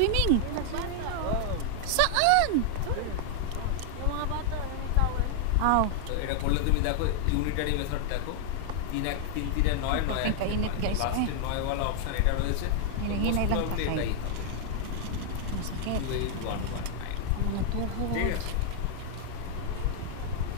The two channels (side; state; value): both; different; correlation 0.00